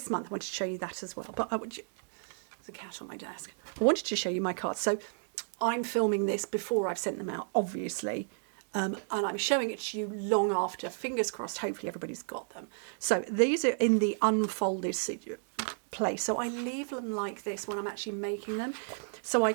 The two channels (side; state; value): left; silent; digital silence